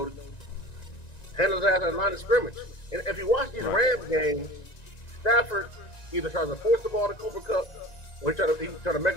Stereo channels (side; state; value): right; late; 1.9 ms